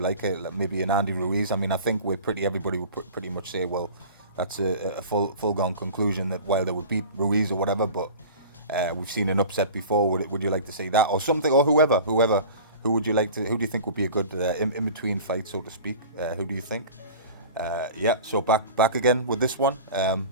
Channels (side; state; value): both; inverted; correlation -0.39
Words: maybe an Andy Ruiz? I mean, I think everybody would pretty much say, well, that's a full gone conclusion that Wilder would beat Ruiz or whatever. But we've seen an upset before. Would you like to see that or something or whoever? Who would you like to? Who do you think would be a good in between fight, so to speak? Who do you think? Yeah. So back again with this one.